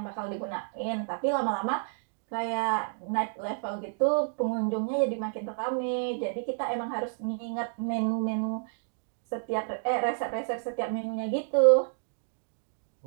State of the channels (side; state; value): left; silent; digital silence